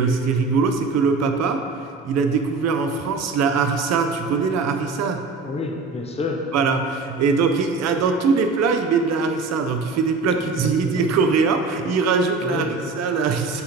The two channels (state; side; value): quieter; left; 4.2 dB